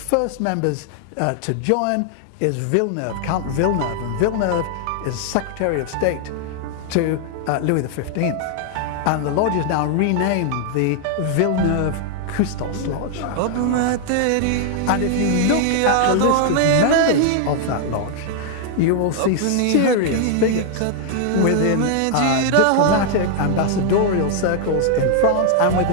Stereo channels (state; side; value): different; both; correlation 0.00